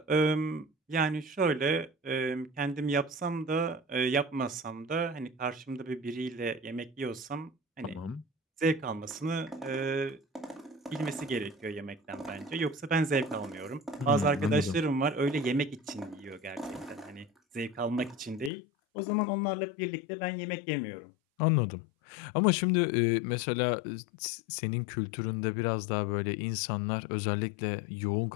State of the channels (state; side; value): drops out; right; at 18.5 s